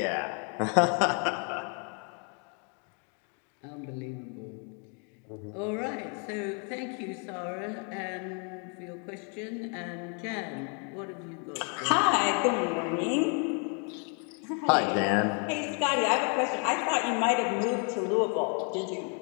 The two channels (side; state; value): right; quieter; 38.4 dB